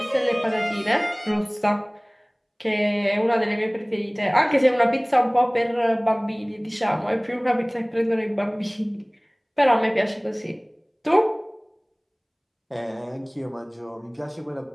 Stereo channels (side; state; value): both; identical; correlation 1.00